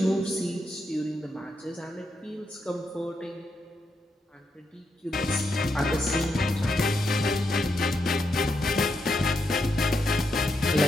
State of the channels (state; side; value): normal; both; correlation 0.82